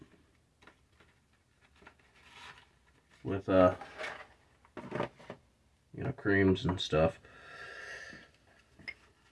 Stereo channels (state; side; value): identical; both; correlation 1.00